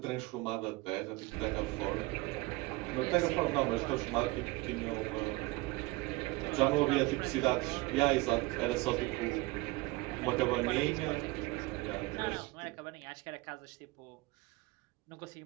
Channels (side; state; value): left; quieter; 21.7 dB